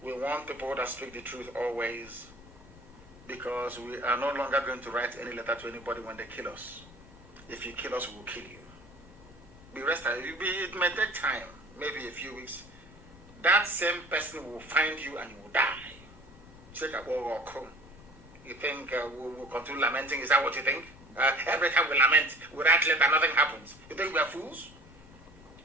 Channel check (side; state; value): left; noise; rumble, 22 dB below the sound